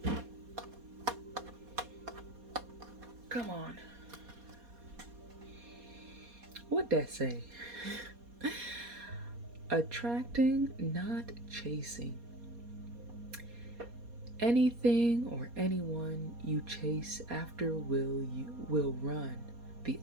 Come on. What'd that say? Attracting, not chasing. Anything or anyone you chase after will run the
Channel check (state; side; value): late; left; 4.2 ms